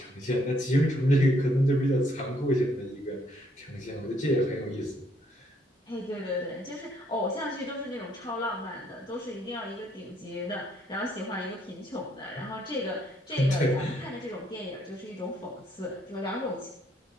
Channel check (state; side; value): normal; both; correlation 0.69